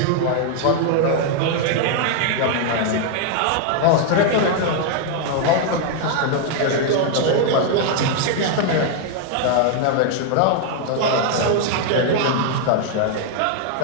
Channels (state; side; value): different; both; correlation 0.00